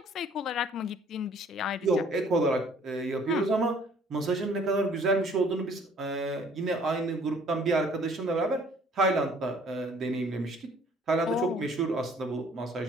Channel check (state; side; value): normal; both; correlation 0.57